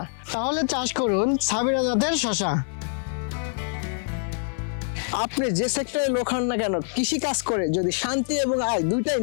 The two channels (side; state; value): right; silent; digital silence